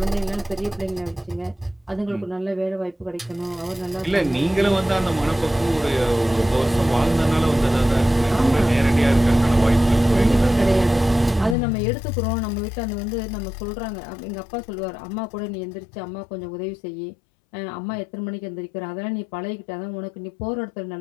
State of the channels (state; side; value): drops out; right; at 11.6 s